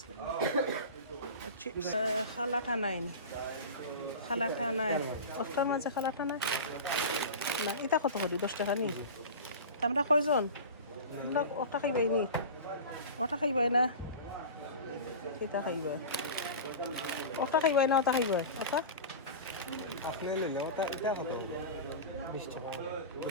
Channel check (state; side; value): inverted; both; correlation -0.31